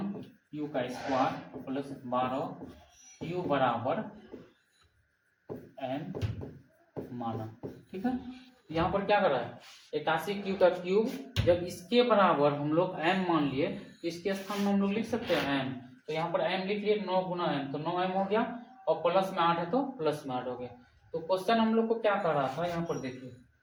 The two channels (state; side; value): identical; both; correlation 1.00